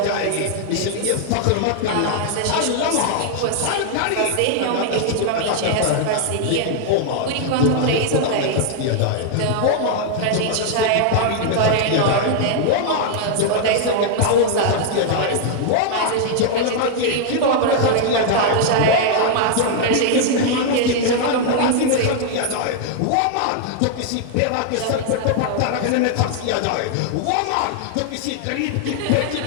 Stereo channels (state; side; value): different; both; correlation 0.00